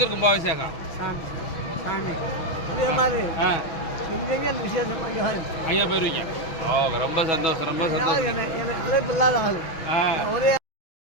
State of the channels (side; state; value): right; late; 6.2 ms